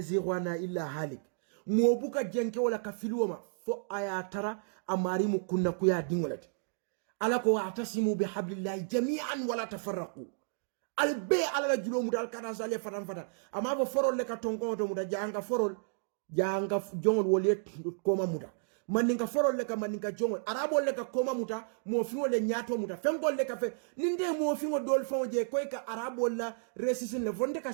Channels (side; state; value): left; silent; digital silence